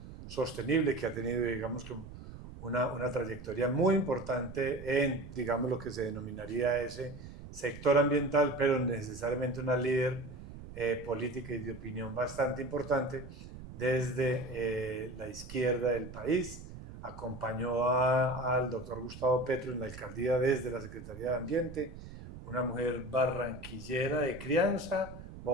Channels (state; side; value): noise; right; rumble, 13 dB below the sound